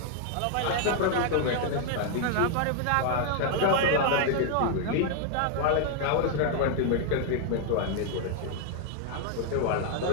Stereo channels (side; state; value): both; different; correlation 0.00